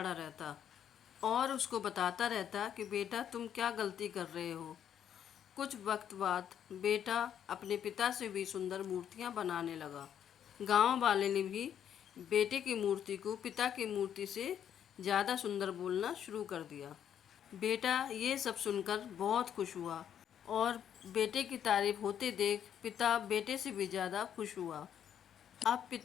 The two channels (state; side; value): quieter; right; 9.3 dB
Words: रहता और उसको बताता रहता कि बेटा तुम क्या गलती कर रहे हो। कुछ वक्त बाद बेटा अपने पिता से भी सुंदर मूर्तियां बनाने लगा। गांव वाले ने भी बेटे की मूर्ति को पिता की मूर्ति से ज़्यादा सुंदर बोलना शुरू कर दिया। बेटा ये सब सुनकर बहुत खुश हुआ और बेटे की तारीफ होते देख पिता बेटे से भी ज़्यादा खुश हुआ। अब